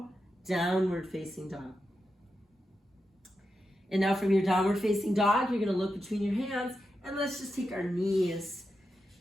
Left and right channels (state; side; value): normal; both; correlation 0.88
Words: downward facing dog. And now from your downward facing dog, you're gonna look between your hands, and let's just take our knees